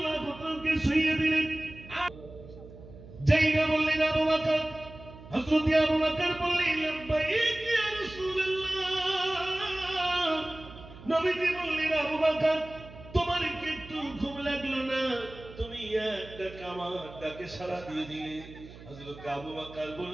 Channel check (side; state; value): right; noise; hum, 17 dB below the sound